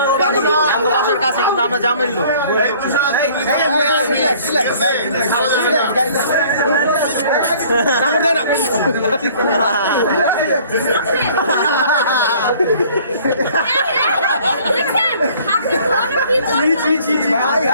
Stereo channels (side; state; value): both; inverted; correlation -0.54